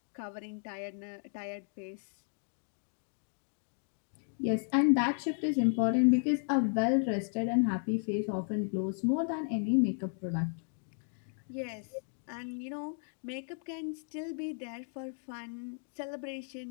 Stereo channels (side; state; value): right; silent; 55 dB below the other